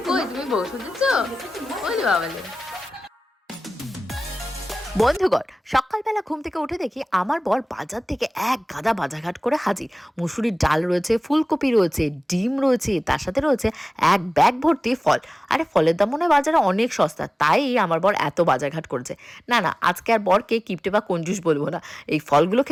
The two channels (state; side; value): normal; both; correlation 0.97